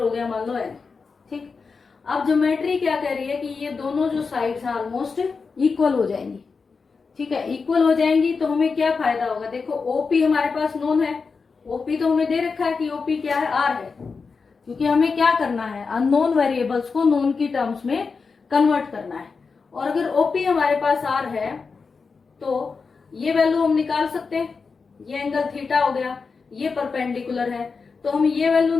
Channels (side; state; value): right; quieter; 4.9 dB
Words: गया मान लो n, ठीक. अब ज्योमेट्री क्या कह रही है कि ये दोनों जो साइड्स हैं ऑलमोस्ट इक्वल हो जाएंगी, ठीक है. इक्वल हो जाएंगी तो हमें क्या फायदा होगा, देखो OP हमारे पास नोन है, OP तो हमें दे रखा है कि OP क्या है, R है. क्योंकि हमें क्या करना है, अननोन वेरिएबल्स को नोन की टर्म्स में कन्वर्ट करना है. और अगर OP हमारे पास R है तो ये वैल्यू हम निकाल सकते हैं. ये एंगल थीटा हो गया, ये परपेंडिकुलर है, तो हम ये वैल्यू